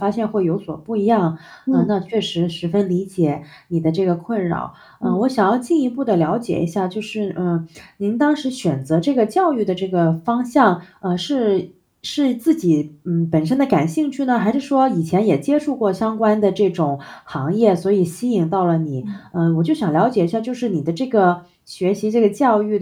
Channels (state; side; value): identical; both; correlation 1.00